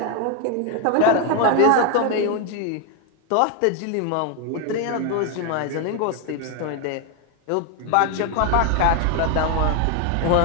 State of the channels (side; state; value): both; different; correlation 0.01